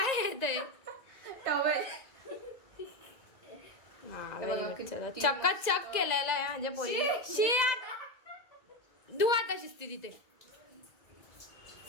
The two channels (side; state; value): right; late; 2.0 ms